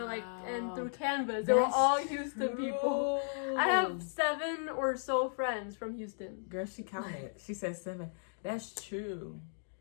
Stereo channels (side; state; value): right; silent; digital silence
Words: like, and through Canvas. They were all Houston people. I have 7 or so friends from Houston. Girl, she counted. She said 7. That's true.